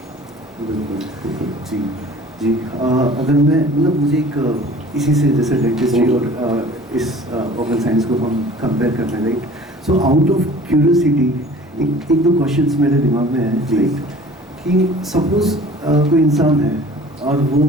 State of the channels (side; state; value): both; normal; correlation 0.47